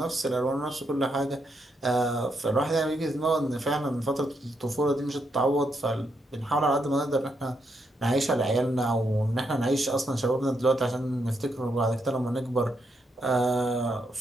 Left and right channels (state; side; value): normal; both; correlation 0.79